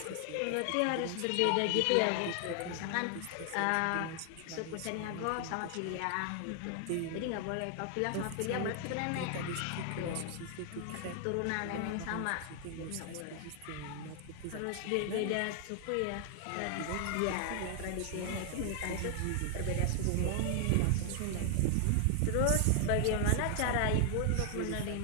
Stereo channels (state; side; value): different; both; correlation 0.00